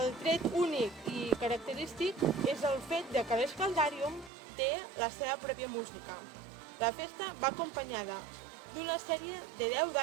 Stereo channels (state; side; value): drops out; left; at 4.3 s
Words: tret únic i característic és el fet que l'Escaldarium té la seva pròpia música. La festa va acompanyada d'una sèrie de 10